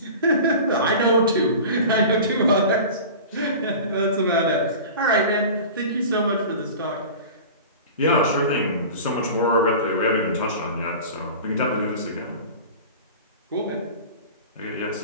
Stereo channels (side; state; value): both; inverted; correlation -0.36